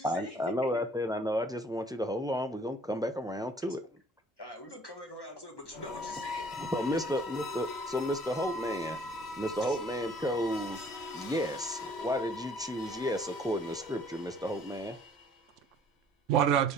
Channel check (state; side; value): normal; both; correlation 0.56